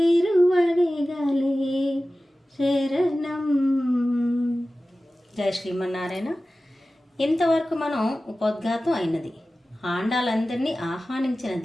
శరణం. జయ శ్రీమన్నారాయణ. ఇంతవరకు మనం ఉపోద్ఘాతం అయినది, ఆండాలందరినీ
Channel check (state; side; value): normal; both; correlation 0.96